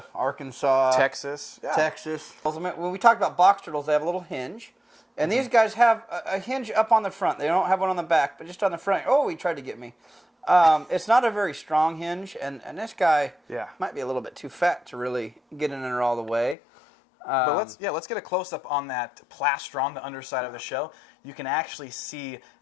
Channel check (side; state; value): right; drops out; at 16.6 s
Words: Arkansas. Texas. Yeah. Texas. When we talk about box turtles, they have a little hinge. And these guys have a hinge up on the front. They don't have one on the back, but just on the front. Oh, he tried to get me. It's not a very strong hinge, and this guy might be a little bit too fat to really get in there all the way. But let's get a close-up on that plaster on the underside of the shell. You can actually see